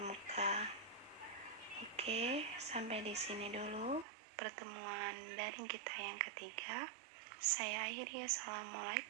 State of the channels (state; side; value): drops out; left; at 4.0 s